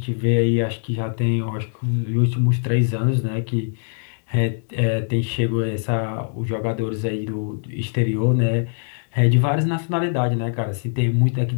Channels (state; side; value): silent; right; 64 dB below the other